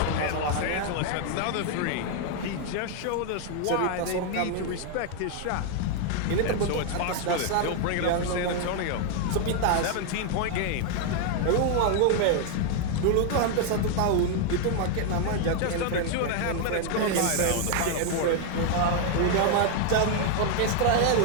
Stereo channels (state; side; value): different; both; correlation 0.00